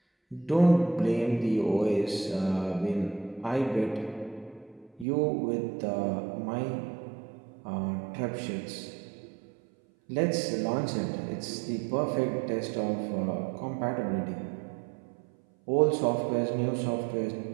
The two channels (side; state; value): left; drops out; at 5.1 s